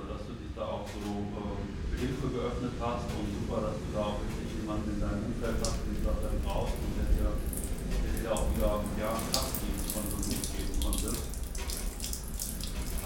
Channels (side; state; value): both; identical; correlation 1.00